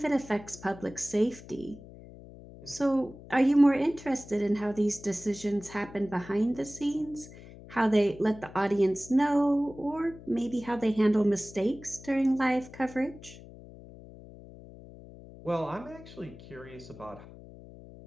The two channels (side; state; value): left; noise; hum, 18 dB below the sound